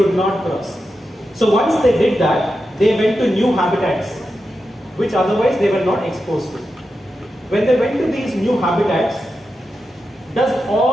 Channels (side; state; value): both; normal; correlation 0.89